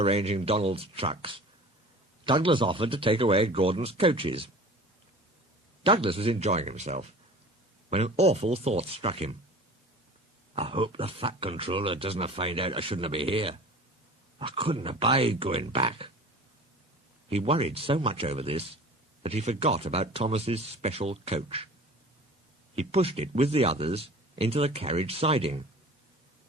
Donald's trucks, Douglas offered to take away Gordon's coaches. Douglas was enjoying himself, when an awful thought struck him. "I hope the Fat Controller doesn't find out I shouldn't be here. I couldn't abide going back." He worried so much over this that he forgot about Thomas's special coach. He pushed it with the others into the carriage siding,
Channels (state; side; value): normal; both; correlation 0.42